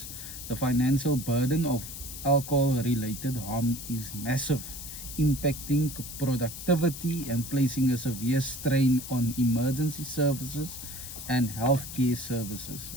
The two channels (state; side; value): noise; left; hiss, 10 dB below the sound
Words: the financial burden of alcohol-related harm is massive, impacting productivity and placing a severe strain on emergency services and healthcare services.